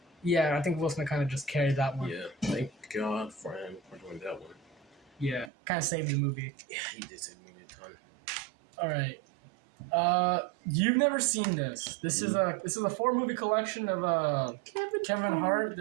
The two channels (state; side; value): drops out; left; at 5.5 s